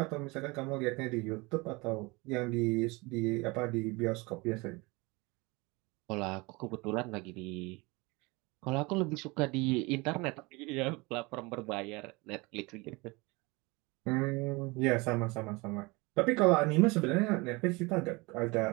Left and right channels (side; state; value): left; quieter; 25.2 dB